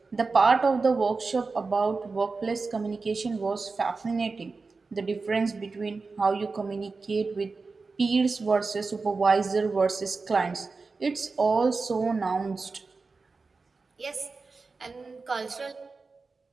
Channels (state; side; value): quieter; left; 4.2 dB